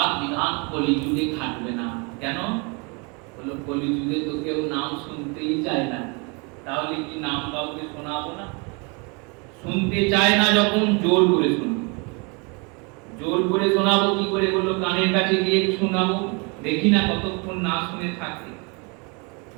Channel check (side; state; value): left; quieter; 31.7 dB